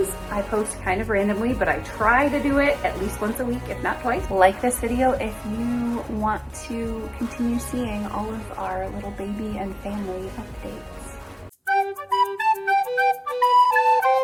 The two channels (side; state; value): both; identical; correlation 1.00